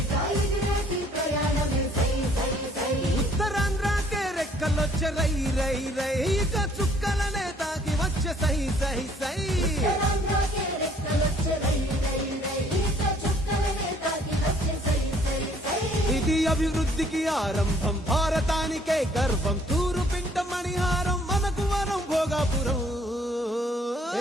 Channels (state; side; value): normal; both; correlation 0.61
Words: ఉత్తరాంధ్రకే రెక్కలొచ్చే రై రై రై ఇక చుక్కలనే తాకి వచ్చే సై సై సై ఇది అభివృద్ధికి ఆరంభం భారతానికే గర్వం తూరు పింట మణిహారం మనకు వరం భోగాపురం